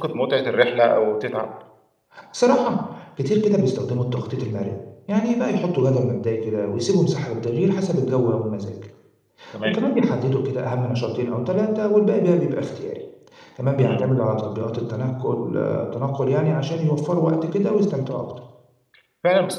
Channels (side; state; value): both; identical; correlation 1.00